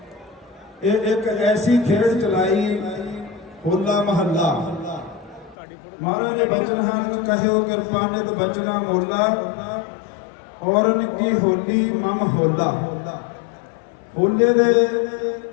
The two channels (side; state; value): right; drops out; at 5.6 s